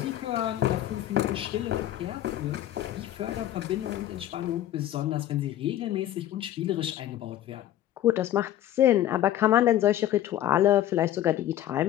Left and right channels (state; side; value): quieter; right; 12.7 dB